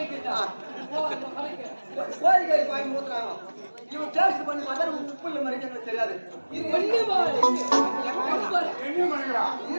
கோழிக்காரி பாய்க்கு ஊத்துனாங்க. இவன் டேஸ்ட் பண்ணி பார்த்தா உப்பு இல்லை மாதிரி எங்களுக்கு தெரியாது.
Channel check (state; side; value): inverted; both; correlation -1.00